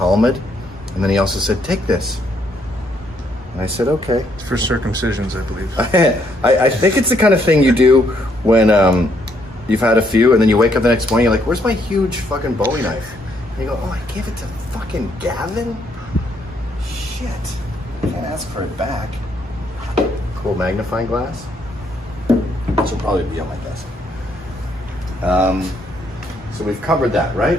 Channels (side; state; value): both; normal; correlation 0.72